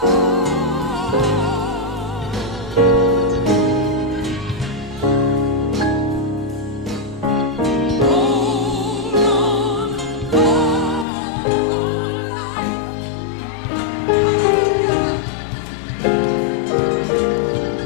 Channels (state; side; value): drops out; right; at 11.1 s